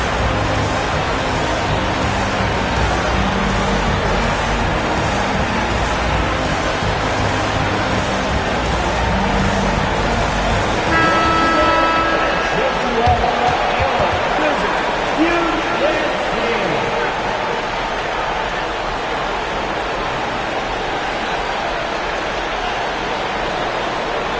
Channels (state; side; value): identical; both; correlation 1.00